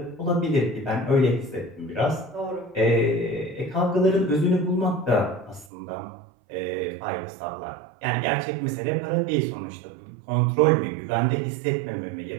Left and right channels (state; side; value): drops out; left; at 5.7 s